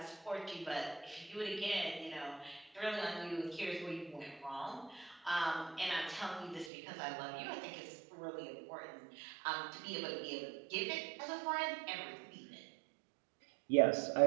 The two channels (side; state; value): left; drops out; at 6.7 s